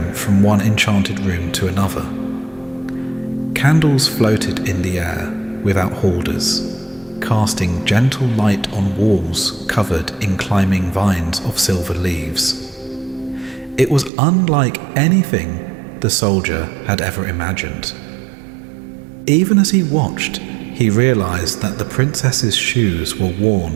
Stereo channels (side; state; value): left; drops out; at 14.1 s